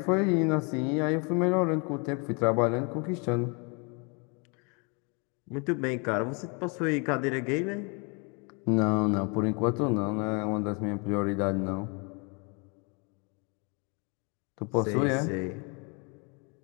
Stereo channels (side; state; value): right; quieter; 33.2 dB